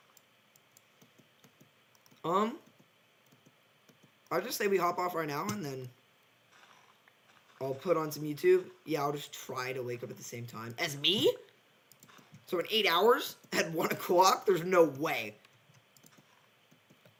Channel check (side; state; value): both; identical; correlation 1.00